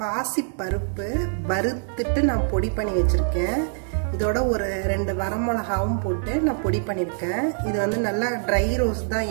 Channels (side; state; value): left; silent; 62 dB below the other